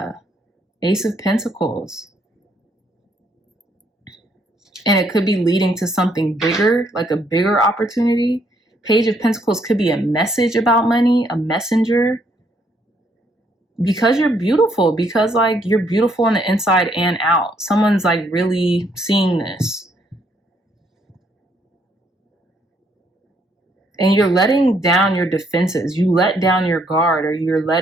Ace of Pentacles. And it could be leading to something bigger, like a bigger opportunity. Page of Pentacles could be a message about money, a messenger. Because you're beautiful, because like you're beautiful on the inside and out. Someone's like really seeing this. And you're letting down your defenses. You let down your guard, or you're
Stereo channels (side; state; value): both; normal; correlation 0.70